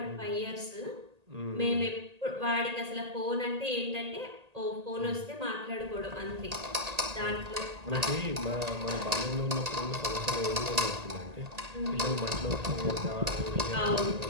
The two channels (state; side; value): late; left; 1.8 ms